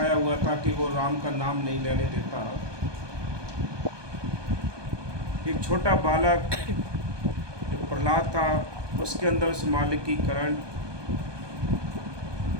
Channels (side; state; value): left; late; 1.2 ms